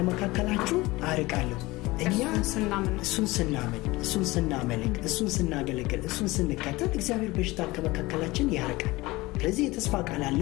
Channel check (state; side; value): quieter; right; 20.8 dB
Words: አርቃለሁ እኛ እሱን ስናመልክ እሱን ስናገለግል እሱን ስንከተል እግዚአብሔር በሽታን ከመካከላችን ያርቃል ስለዚህ የተስፋ ቃል